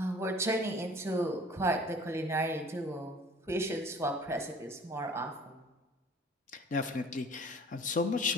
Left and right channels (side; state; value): both; normal; correlation 0.48